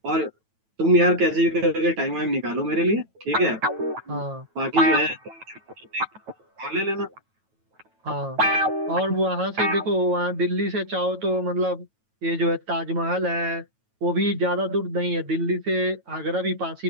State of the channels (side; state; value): left; late; 9.1 ms